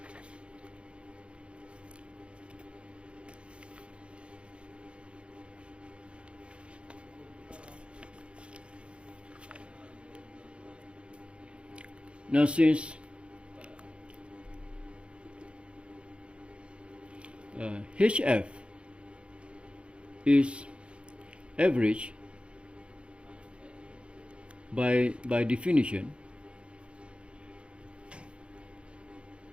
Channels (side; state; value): left; late; 0.058 ms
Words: Now, since HF is average by definition,